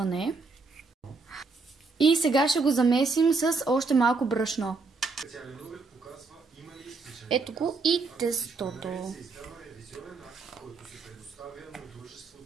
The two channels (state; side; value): quieter; left; 4.1 dB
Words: И сега ще го замесим с още малко брашно. Ето го и тестото.